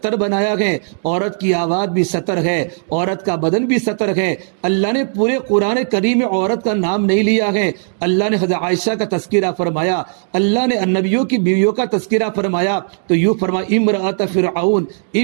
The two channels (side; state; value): left; silent; digital silence